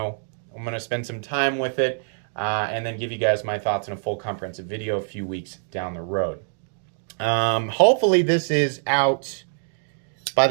I'm going to spend some time with it and then give you guys my thoughts in a full comprehensive video a few weeks down the road. Hopefully this is out by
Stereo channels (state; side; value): silent; left; digital silence